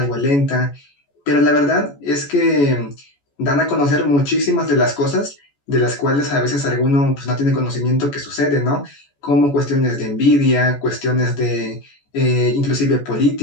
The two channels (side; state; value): right; late; 14 ms